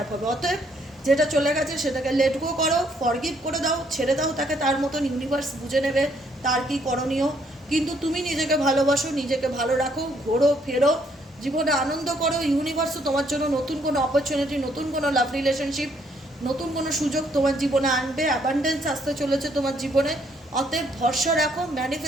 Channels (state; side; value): normal; both; correlation 0.68